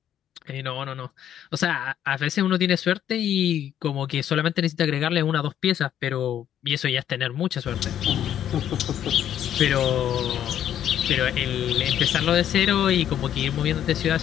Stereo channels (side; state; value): right; quieter; 10.4 dB